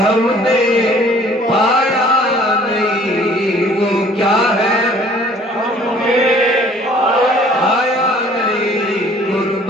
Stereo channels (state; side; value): normal; both; correlation 0.54